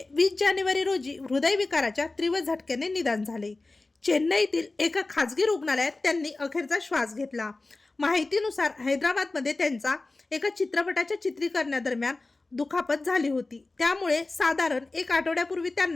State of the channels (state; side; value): quieter; right; 3.3 dB